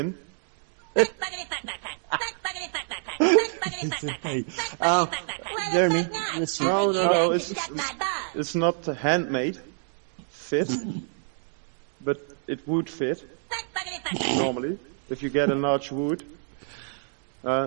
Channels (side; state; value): left; silent; digital silence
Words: Jeremy, listen. No, it's not handmade. Fit. But it would fit. normally, if you get a large wood.